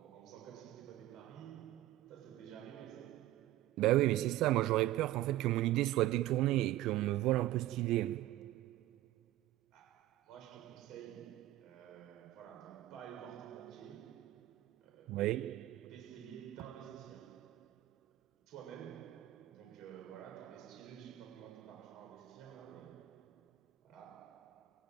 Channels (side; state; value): left; quieter; 15.3 dB